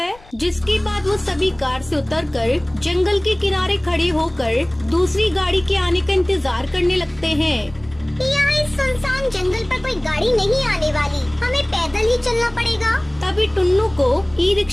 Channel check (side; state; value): left; noise; rumble, 25 dB below the sound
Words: जिसके बाद वो सभी कार से उतरकर जंगल के किनारे खड़े होकर दूसरी गाड़ी के आने का इंतजार करने लगते हैं। यहाँ इस सुनसान जंगल पर कोई गाड़ी नहीं आने वाली, हमें पैदल ही चलना पड़ेगा। तभी टुन्नू को ई